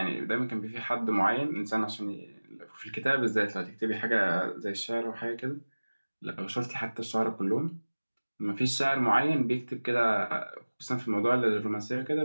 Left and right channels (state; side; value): inverted; both; correlation -1.00